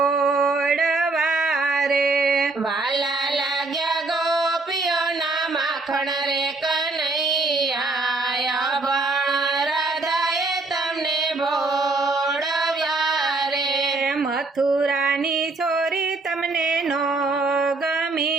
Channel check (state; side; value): quieter; left; 3.4 dB